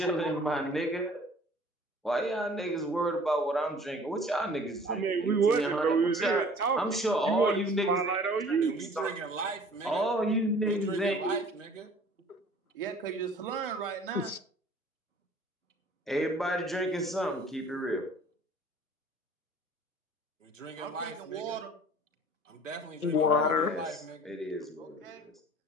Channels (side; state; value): both; normal; correlation 0.50